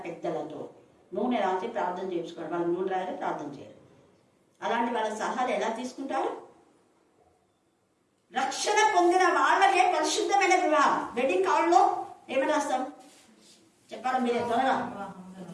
పెద్దలతో నూనె రాసి ప్రార్థన చేయించుకోండి. వాళ్ళు నూనె రాసి ప్రార్థన చేయరు. అలాంటి వాళ్ళ సలహాలు ఎలా తీసుకుంటారు? రక్షణ పొందిన వాళ్ళకే పరిశుద్ధమైన వివాహం. వెడ్డింగ్ కార్డులో ఏమని రాస్తాం చెప్పాలి మీరే త్వరగా?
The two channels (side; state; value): both; identical; correlation 1.00